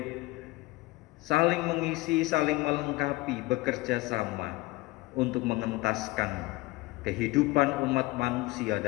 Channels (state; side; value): quieter; right; 20.7 dB